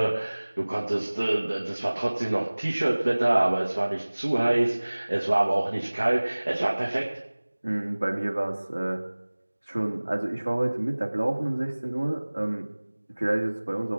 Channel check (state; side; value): inverted; both; correlation -1.00